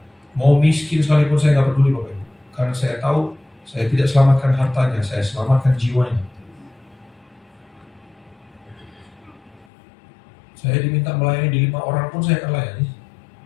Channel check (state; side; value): drops out; right; at 9.7 s